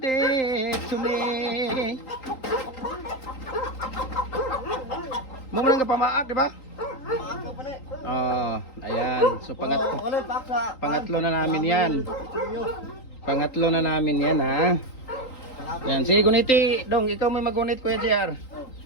to me. Mo nang pamaak, di ba? Maaka pa na. Oh, ayan. So pangatlo na namin 'yan. Pangatlo na namin 'yan, ha. Yan, sige guniti, dong, ikaw may magunit Kuya JR.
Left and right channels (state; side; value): late; right; 3.8 ms